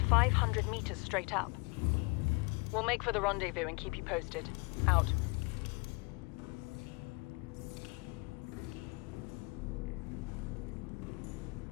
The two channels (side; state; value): right; quieter; 28.5 dB